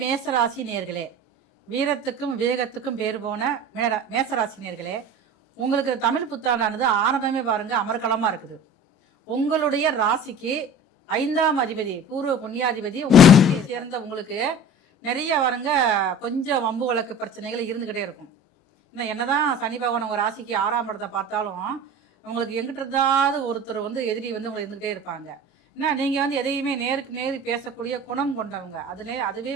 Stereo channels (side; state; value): both; normal; correlation 0.39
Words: மேசராசி நேர்களே, வீரத்துக்கும் விவேகத்துக்கும் பேர் போன மேசராசி நேர்களே, உங்களுக்கு தமிழ் புத்தாண்டானது ஆரம்பமே பாருங்க அமர்கலமா இருக்குது. உங்களுடைய ராசிக்கு 5ஆம் அதிபதி பூர்வ புண்ணியாதிபதி உங்களை சேர்ந்த உங்களுக்கு நிறைய பாருங்க கொஞ்சம் வம்பு வழக்கு பிரச்சனைகள் இருந்துக்கிட்டே இருக்கும். இன்னும் என்னதான் சனி பகவான் உங்கள் ராசிக்கு 6ஆம் இடத்தை பார்த்தாலும் உங்களுக்கு எங்கிட்ட இருந்தாவது ஒருத்தர் எதிரி உங்களை இருந்துக்கிட்டே இருப்பாங்க. ஏன்னா நீங்கள் எதையுமே நேருக்கு நேரு பேசக்கூடிய குணம் கொண்டவங்க. அதுவே